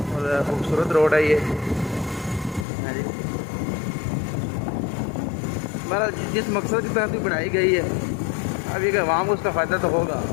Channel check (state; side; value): drops out; right; at 2.7 s